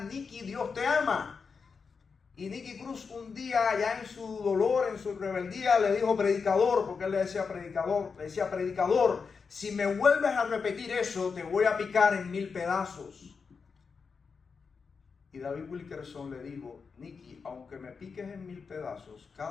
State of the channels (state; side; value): quieter; right; 5.3 dB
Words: Dios te ama. Y Nicky Cruz un día, ya en su dolor, en su rebeldía, le dijo predicador, porque él le decía predicador, si me vuelves a repetir eso, te voy a picar en 1000 pedazos. Y David Wilkerson le dijo, Nicky, aunque me piques en 1000 pedazos,